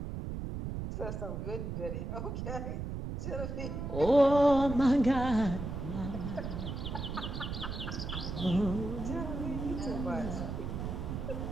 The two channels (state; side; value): noise; right; rumble, 5 dB below the sound